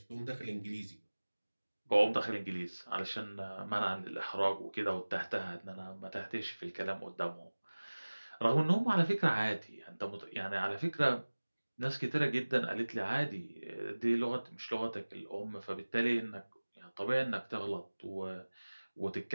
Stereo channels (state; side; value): inverted; both; correlation -1.00